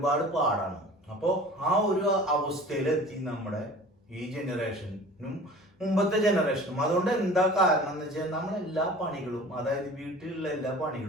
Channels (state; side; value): normal; both; correlation 0.43